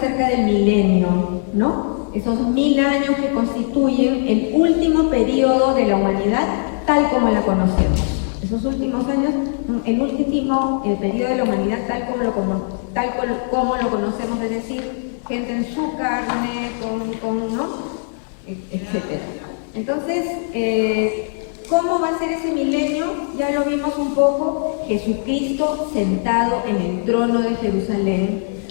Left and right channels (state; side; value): silent; right; digital silence